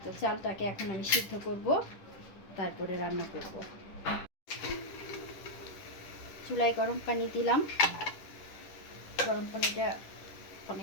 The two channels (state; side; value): late; right; 10 ms